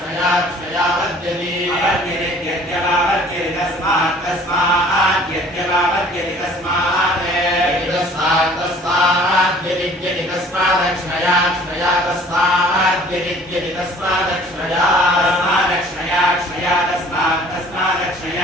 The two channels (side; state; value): both; normal; correlation 0.51